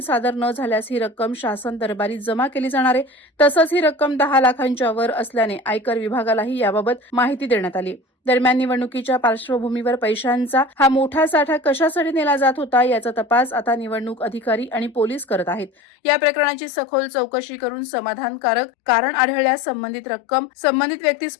न झाल्यास ही रक्कम शासन दरबारी जमा केली जाणार आहे. तसंच ही रक्कम 10 लाखांच्या वर असल्याने आयकर विभागालाही याबाबत माहिती देण्यात आली. दरम्यान निवडणुकीच्या पार्श्वभूमीवर पैशांचा हा मोठा साठा कशासाठी नेला जात होता याचा तपास आता निवडणूक अधिकारी आणि पोलीस करत आहेत. या प्रकरणाची सखोल चौकशी करून समाधानकारक कारण आढळल्यास संबंधित रक्कम संबंधित व्यक्तीस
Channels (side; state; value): right; drops out; at 15.7 s